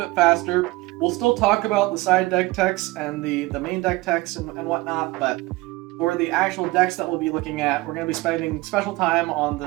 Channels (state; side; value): quieter; left; 20.9 dB